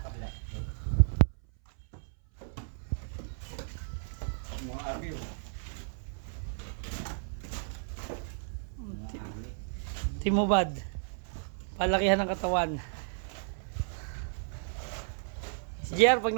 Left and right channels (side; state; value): left; silent; 56 dB below the other